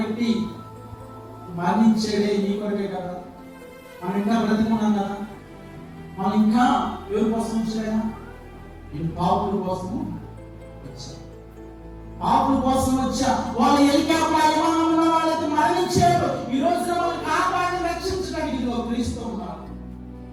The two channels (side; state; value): both; identical; correlation 1.00